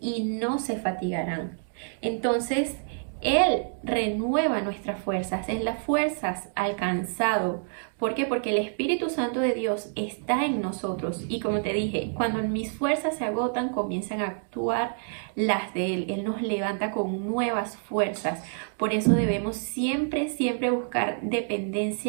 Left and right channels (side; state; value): left; silent; digital silence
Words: no se fatigarán. Entonces, Él renueva nuestras fuerzas, es las fuerzas alcanzado. ¿Por qué? Porque el Espíritu Santo de Dios está en nosotros. Y como te dije, cuando mis fuerzas se agotan, comienzan a actuar las de Él. Él nos levanta con nuevas fuerzas. Por eso debemos siempre buscar